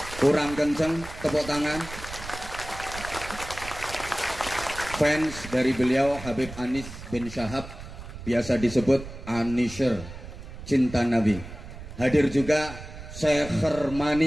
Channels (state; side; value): noise; right; rumble, 13 dB below the sound